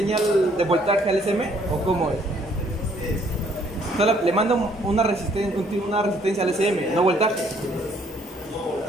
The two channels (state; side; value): normal; both; correlation 0.64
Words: de voltaje al SM? ¿O cómo es? Solo le manda una resistencia al SM, no voltaje.